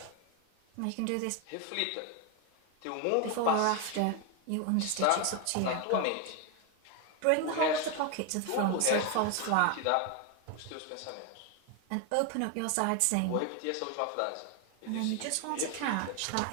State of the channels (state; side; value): different; both; correlation 0.01